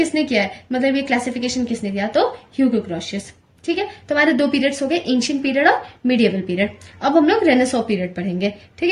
किया है, मतलब ये क्लासिफिकेशन किसने दिया, तो ह्यूगो ग्रोशियस। ठीक है, तो हमारे दो पीरियड्स हो गए, एंशिएंट पीरियड और मिडिएवल पीरियड। अब हम लोग रेनेसॉ पीरियड पढ़ेंगे। ठीक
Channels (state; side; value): identical; both; correlation 1.00